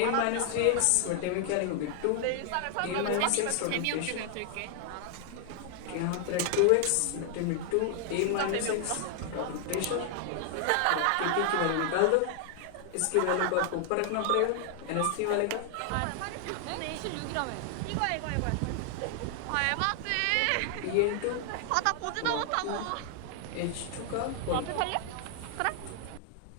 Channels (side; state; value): both; different; correlation 0.00